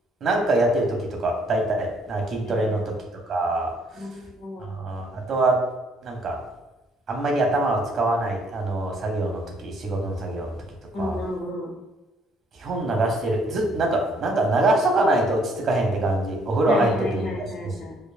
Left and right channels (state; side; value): normal; both; correlation 0.66